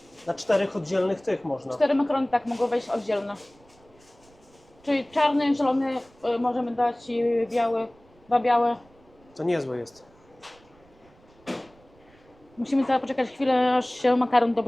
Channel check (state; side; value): noise; right; rumble, 29 dB below the sound